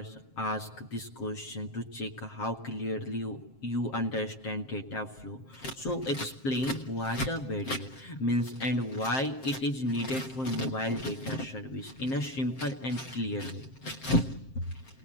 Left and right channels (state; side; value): late; right; 7.6 ms